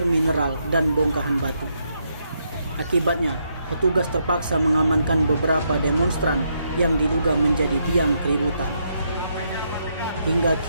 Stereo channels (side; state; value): both; inverted; correlation -0.78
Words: mineral dan bongkahan batu. Akibatnya, petugas terpaksa mengamankan beberapa demonstran yang diduga menjadi biang keributan. Hingga